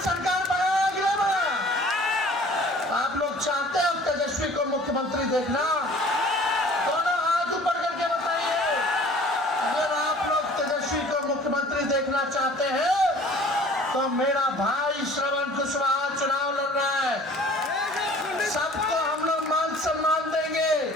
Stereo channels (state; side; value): normal; both; correlation 0.49